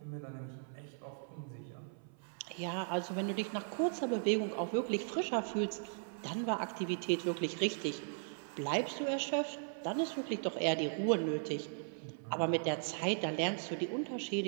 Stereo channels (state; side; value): silent; left; 53 dB below the other